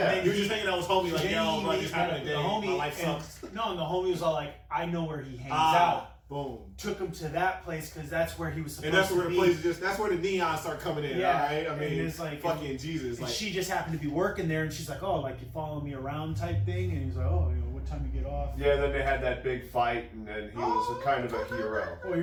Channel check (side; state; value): both; identical; correlation 1.00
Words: He was just hanging out with his homie, like, yo, bro, just having a day. The homie, my life sucks. And the homie was all like, I know where he hangs out. Boom. Took him to that place because that's where he was supposed to be. And that's where the place that's where the neons start coming in, yeah. All right? I mean, it's like, fucking Jesus. And like, she just happened to be working there, and she's like, oh, like, you follow me around type thing? And he's like, oh, what time you get off? Yeah, then they had that big fight, and then he was kind of a hero. Oh,